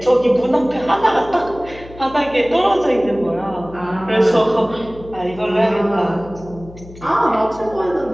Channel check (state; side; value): noise; left; hum, 18 dB below the sound